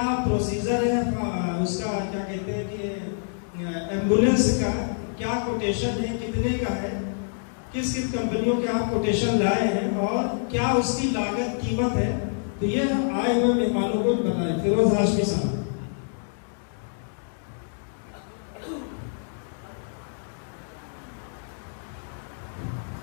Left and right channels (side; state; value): right; silent; digital silence